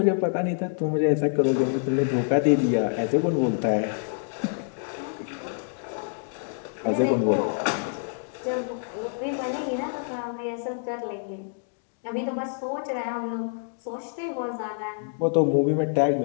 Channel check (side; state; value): right; silent; digital silence